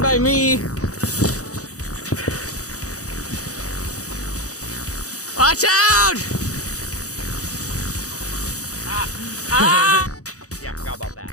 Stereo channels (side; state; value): right; late; 0.66 ms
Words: by me. Watch out! Yeah, forgot about that.